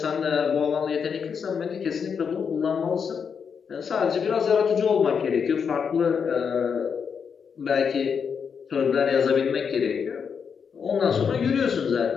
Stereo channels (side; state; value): right; quieter; 6.5 dB